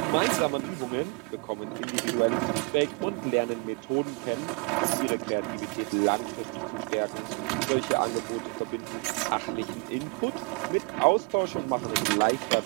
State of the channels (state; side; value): quieter; left; 31.0 dB